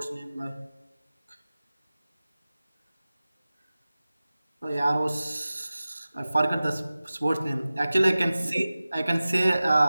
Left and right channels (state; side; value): inverted; both; correlation -0.97